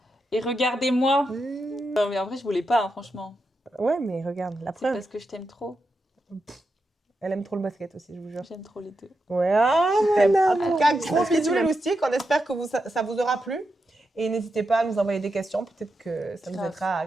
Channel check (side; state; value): both; normal; correlation 0.87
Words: Et regardez-moi. Non, mais en vrai, je voulais pas, hein, franchement. Ouais, mais regarde, la preuve. C'est parce que je t'aime trop. Elle aime trop le basket aussi, je vous jure. J'aime trop les deux. Ouais, en tout cas, gros bisous les loustiques. On espère que ça vous aura plu. Et n'hésitez pas à nous envoyer des questions. Peut-être que ça nous aidera à